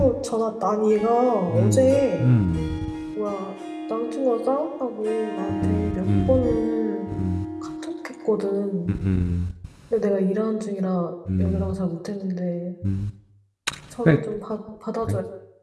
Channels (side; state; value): both; identical; correlation 1.00